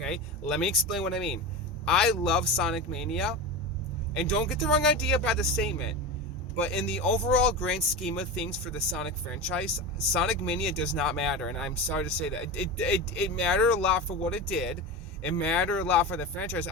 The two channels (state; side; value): normal; both; correlation 0.23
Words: Let me explain what I mean. I love Sonic Mania, and don't get the wrong idea about the statement, but in the overall grand scheme of things for the Sonic franchise, Sonic Mania does not matter, and I'm sorry to say that. It mattered a lot for what it did. It mattered a lot for the franchise.